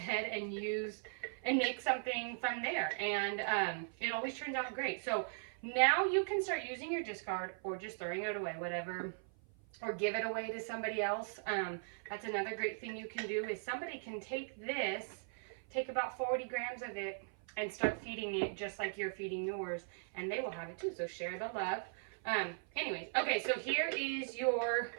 and use and make something from there, and it always turns out great. So now you can start using your discard or just throwing it away, whatever, or give it away to somebody else. That's another great thing you can do is somebody can take this, take about 40 grams of it, and start feeding it just like you're feeding yours, and they will have it too. So share the love. Anyways, okay, so here is your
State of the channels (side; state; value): left; silent; 52 dB below the other